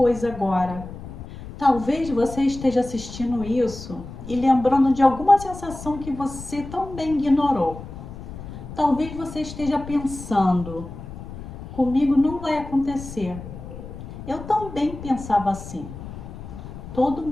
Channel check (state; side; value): noise; left; rumble, 12 dB below the sound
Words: agora. Talvez você esteja assistindo isso e lembrando de alguma sensação que você também ignorou. Talvez você esteja pensando, comigo não vai acontecer. Eu também pensava assim. Todo